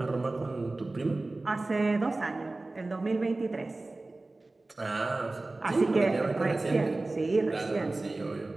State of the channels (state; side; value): quieter; left; 3.1 dB